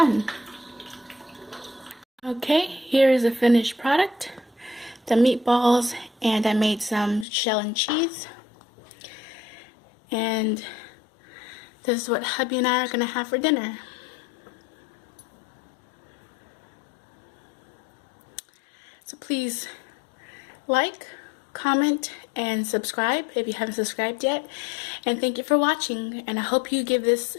Okay, here is the finished product. The meatballs, and I made some shell and cheese. And this is what hubby and I are gonna have for dinner. So please like, comment, and subscribe if you haven't subscribed yet. And thank you for watching, and I hope you give this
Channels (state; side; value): drops out; right; at 7.2 s